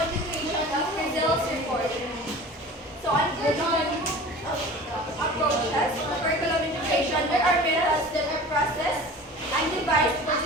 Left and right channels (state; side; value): normal; both; correlation 0.39